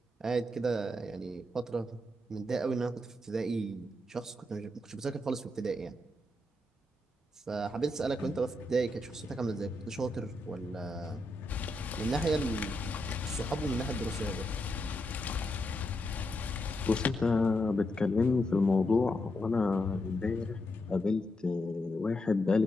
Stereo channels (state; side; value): normal; both; correlation 0.83